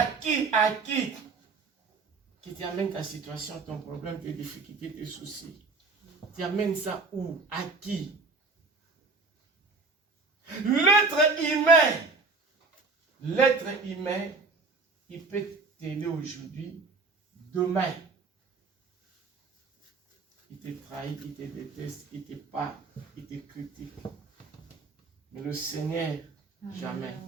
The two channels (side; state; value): left; quieter; 4.1 dB